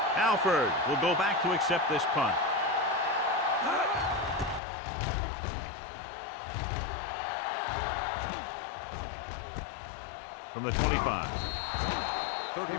Alford will go back to accept this punt. From the 25.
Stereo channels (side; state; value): right; drops out; at 4.6 s